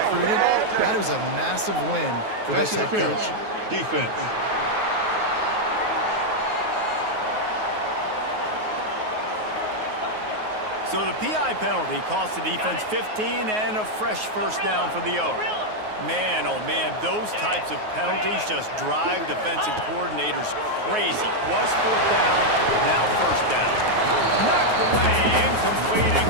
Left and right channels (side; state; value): left; late; 9.4 ms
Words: recruited, that is a massive win for this head coach. Defense. So the PI penalty cost the defense 15 and a fresh first down for the Oaks. Man, oh man, those types of penalties just drive defensive coordinators crazy. Was fourth down, now first down. Knocked away, incomplete, and